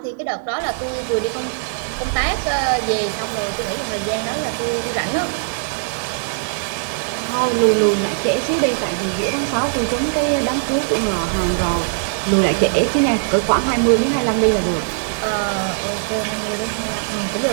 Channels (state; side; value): silent; left; digital silence